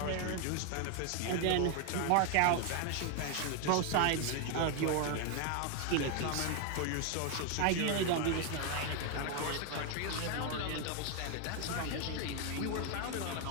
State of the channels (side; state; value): both; different; correlation 0.01